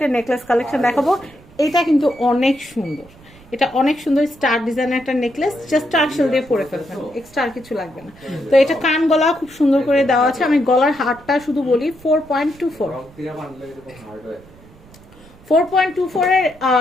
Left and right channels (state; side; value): noise; right; rumble, 24 dB below the sound